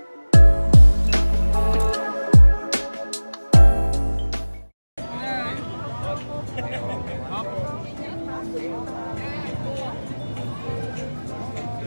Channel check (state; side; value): inverted; both; correlation -1.00